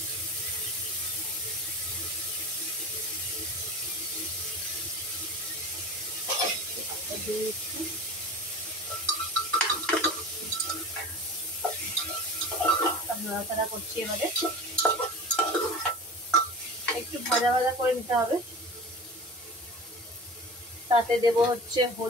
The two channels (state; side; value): normal; both; correlation 0.34